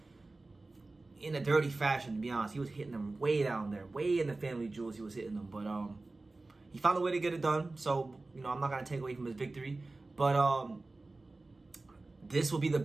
in a dirty fashion. To be honest, he was hitting them way down there, way in the family jewels. He was hitting them, but he found a way to get it done. So, you know, I'm not going to take away from his victory. But this will be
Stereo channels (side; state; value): left; quieter; 3.2 dB